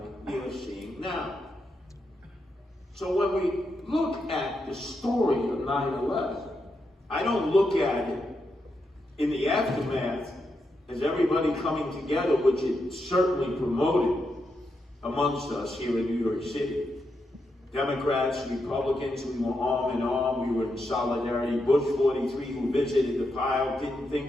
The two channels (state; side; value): normal; both; correlation 0.84